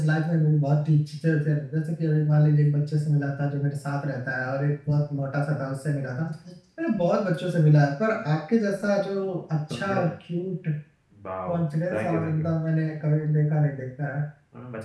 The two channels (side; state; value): both; identical; correlation 1.00